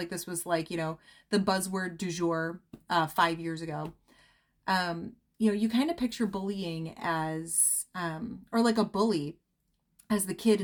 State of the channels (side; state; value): both; identical; correlation 1.00